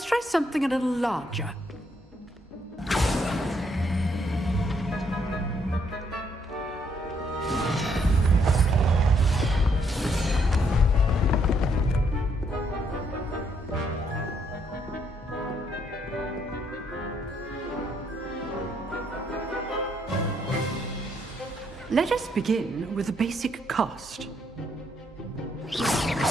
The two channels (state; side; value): normal; both; correlation 0.71